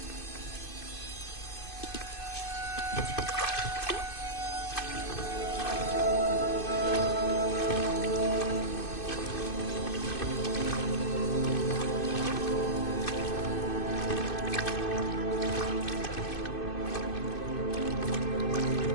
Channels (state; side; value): late; right; 2.5 ms